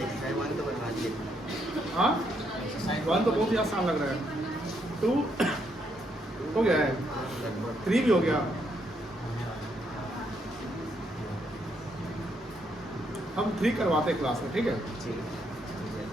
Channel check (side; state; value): both; normal; correlation 0.75